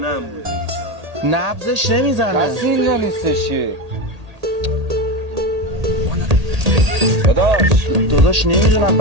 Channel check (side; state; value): left; late; 1.8 ms